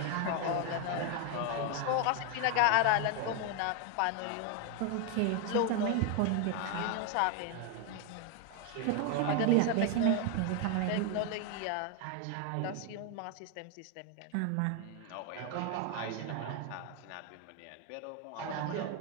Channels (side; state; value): both; different; correlation 0.01